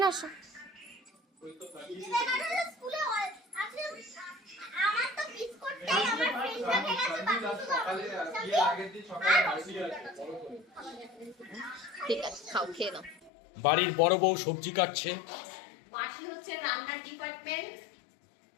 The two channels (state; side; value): drops out; right; at 13.3 s